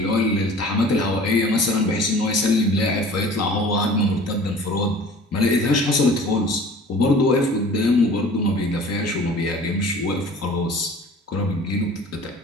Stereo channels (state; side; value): normal; both; correlation 0.45